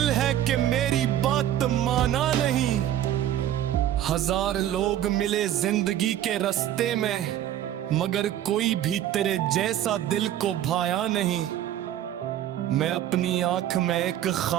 है कि मेरी बात माना नहीं। हजार लोग मिले जिंदगी के रास्ते में, मगर कोई भी तेरे जैसा दिल को भाया नहीं। मैं अपनी आंख में एक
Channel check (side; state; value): left; quieter; 11.7 dB